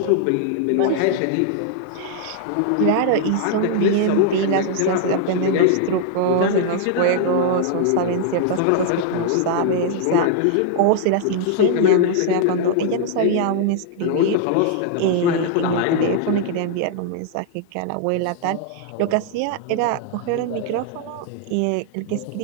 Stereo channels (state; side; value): different; both; correlation -0.01